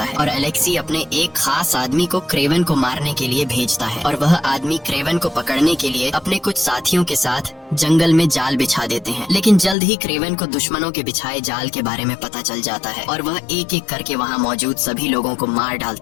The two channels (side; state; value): right; drops out; at 9.8 s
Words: है और अलेक्सी अपने एक खास आदमी को क्रेवन को मारने के लिए भेजता है और वह आदमी क्रेवन को पकड़ने के लिए अपने कुछ साथियों के साथ जंगल में जाल बिछा देते हैं। लेकिन जल्द ही क्रेवन को दुश्मनों के बिछाए जाल के बारे में पता चल जाता है और वह एक एक करके वहाँ मौजूद सभी लोगों को मार